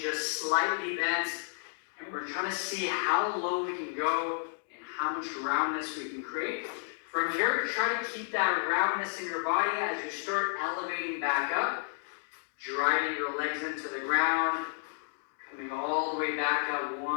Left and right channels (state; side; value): silent; right; 57 dB below the other